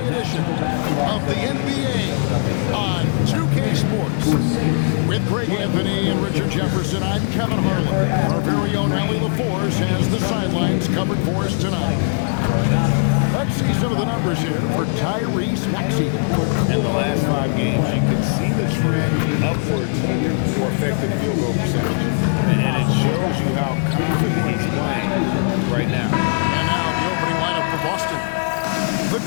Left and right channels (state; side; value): silent; right; digital silence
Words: edition of the NBA on 2K Sports. With Greg Anthony and Richard Jefferson, I'm Kevin Harlan. Our very own Allie LaForce has the sidelines covered for us tonight. Let's see some of the numbers here for Tyrese Maxey. In the last 5 games, you can see the trend upwards for effective field goal percentage. And it shows you how confident he's playing right now. And now the opening lineup for Boston. The